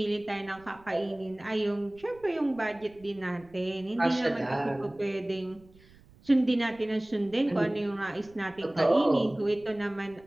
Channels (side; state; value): right; noise; rumble, 26 dB below the sound